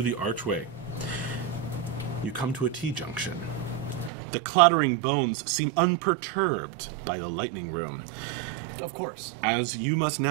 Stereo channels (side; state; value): left; drops out; at 4.1 s